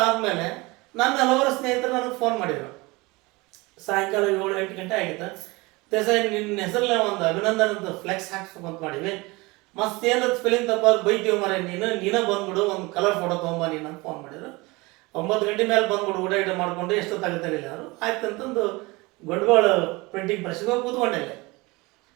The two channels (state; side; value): quieter; left; 23.7 dB